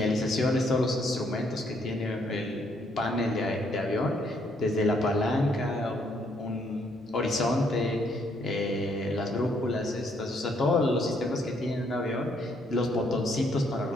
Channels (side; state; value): both; normal; correlation 0.70